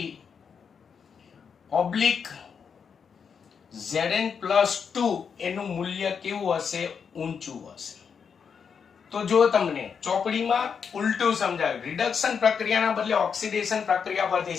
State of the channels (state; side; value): quieter; right; 6.5 dB